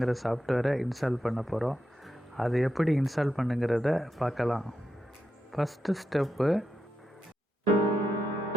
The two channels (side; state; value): both; normal; correlation 0.86